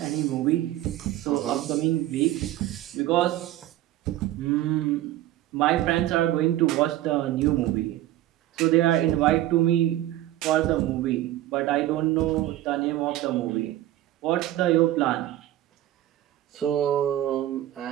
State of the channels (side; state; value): left; quieter; 14.2 dB